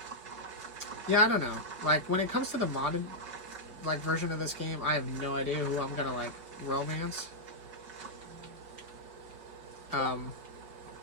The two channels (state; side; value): late; left; 5.1 ms